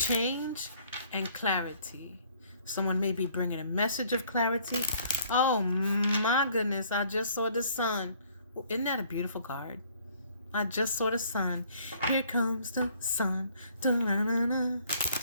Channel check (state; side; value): inverted; both; correlation -0.60